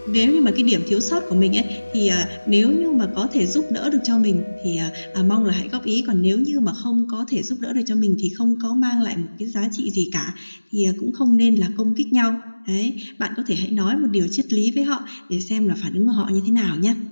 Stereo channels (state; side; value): inverted; both; correlation -1.00